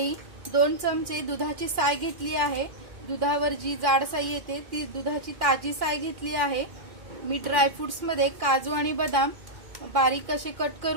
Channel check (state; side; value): late; left; 2.4 ms